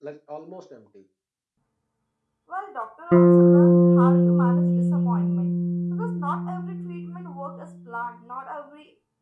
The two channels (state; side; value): identical; both; correlation 1.00